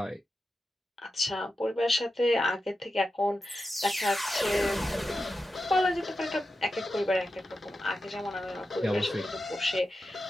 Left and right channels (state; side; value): normal; both; correlation 0.90